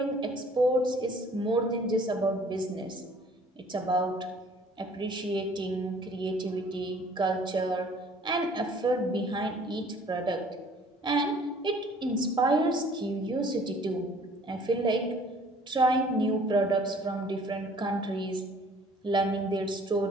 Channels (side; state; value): both; normal; correlation 0.54